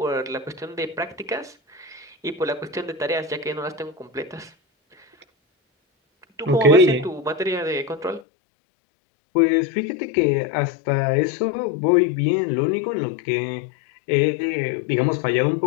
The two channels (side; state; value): right; drops out; at 8.2 s